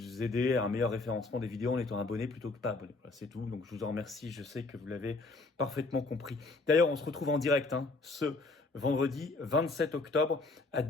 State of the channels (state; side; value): quieter; right; 3.5 dB